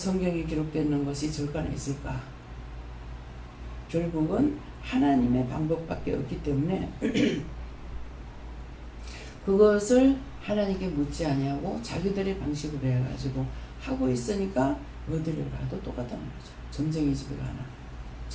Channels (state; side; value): identical; both; correlation 1.00